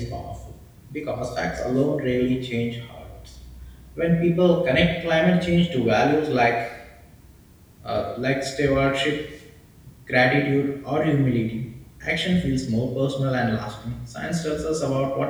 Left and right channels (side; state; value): both; identical; correlation 1.00